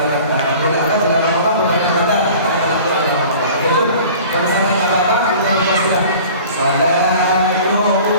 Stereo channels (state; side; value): inverted; both; correlation -0.44